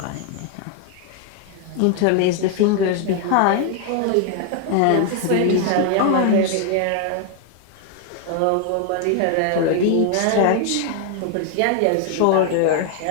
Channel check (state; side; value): different; both; correlation 0.00